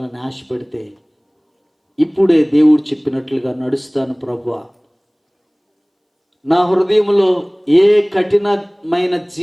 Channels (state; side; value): identical; both; correlation 1.00